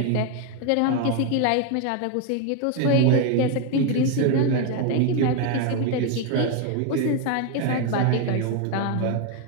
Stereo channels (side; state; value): both; different; correlation 0.01